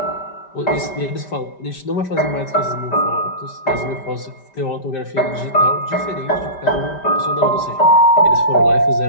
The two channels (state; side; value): late; right; 5.1 ms